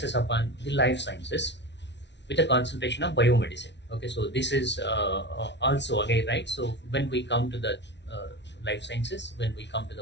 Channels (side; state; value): right; late; 0.51 ms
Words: upon the life sciences with a concentration of biomedicine. Okay, so this is also again, right. So when we come to the life sciences, when we come to